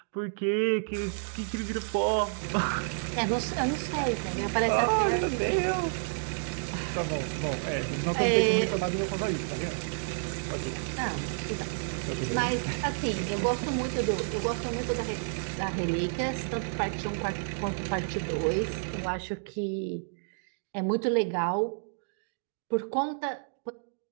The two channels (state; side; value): silent; left; digital silence